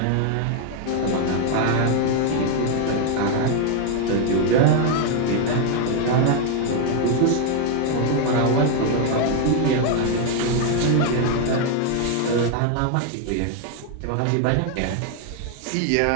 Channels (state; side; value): different; both; correlation 0.01